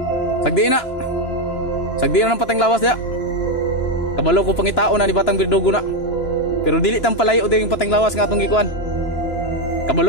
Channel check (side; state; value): right; late; 2.9 ms